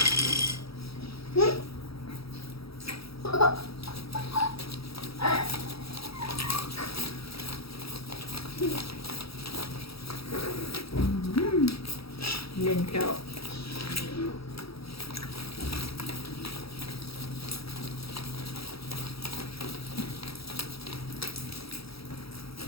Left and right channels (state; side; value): late; right; 0.76 ms